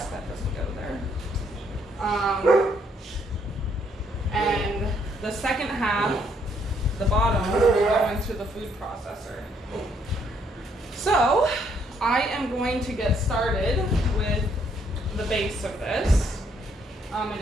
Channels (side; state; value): both; normal; correlation 0.69